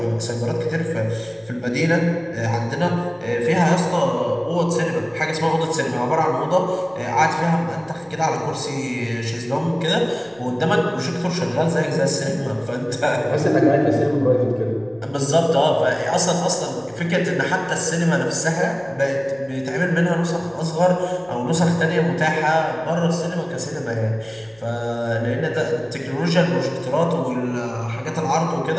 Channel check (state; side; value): noise; right; hum, 30 dB below the sound